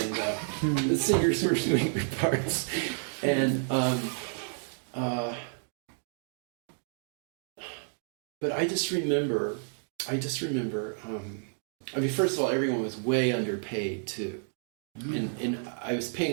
the singers were doing their parts. And, but I just remember, first of all, everyone was way underpaid, too. And I was paying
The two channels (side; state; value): left; silent; digital silence